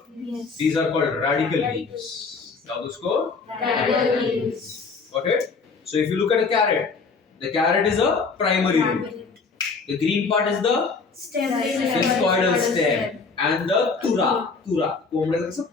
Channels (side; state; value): right; quieter; 4.7 dB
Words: Yes. These are called radical leaves. Now उसको Radical leaves. got it? So if you look at a carrot, the carrot is a primary root. The green part is the Stem. discoidal stem. And the tura. कोंबड्याचा कसं